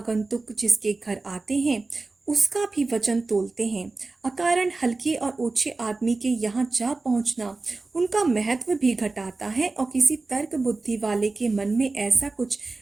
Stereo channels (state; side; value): quieter; left; 3.5 dB